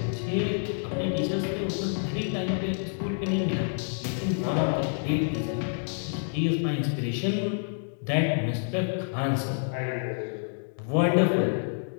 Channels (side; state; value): right; silent; digital silence